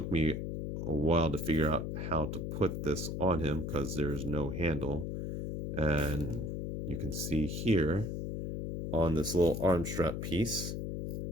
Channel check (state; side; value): noise; left; hum, 4 dB below the sound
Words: me a while to figure out how to put this on him because there's no handle. And you can see here on this little arm strap piece,